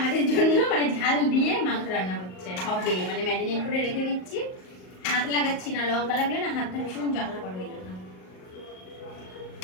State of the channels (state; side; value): late; right; 38 ms